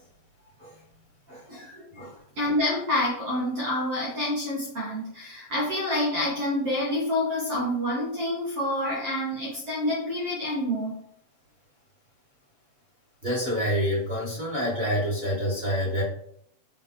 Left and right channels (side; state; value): left; late; 7.5 ms